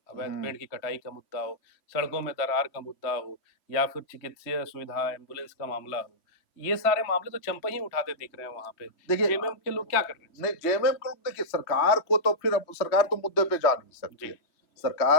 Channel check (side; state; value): right; late; 3.1 ms